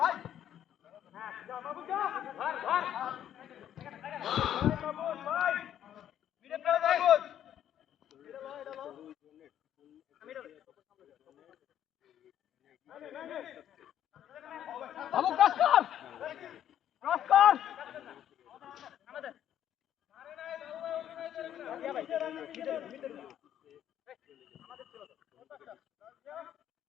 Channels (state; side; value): quieter; right; 10.6 dB